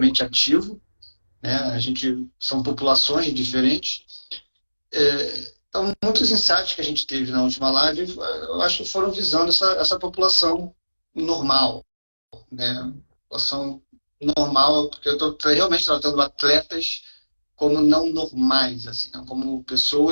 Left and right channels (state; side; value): inverted; both; correlation -1.00